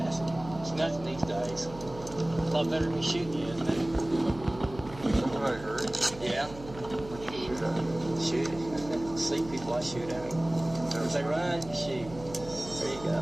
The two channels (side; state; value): right; noise; hum, 15 dB below the sound